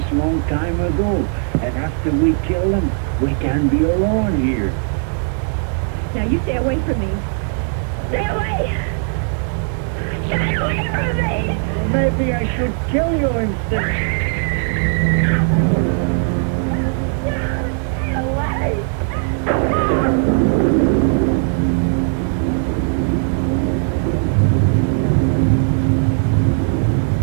long time ago. And after we kill them, we can be alone here. Now, you stay away from me. Stay away! Stay away from me! Maybe I should kill you instead. Stay away!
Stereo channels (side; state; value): left; silent; 55 dB below the other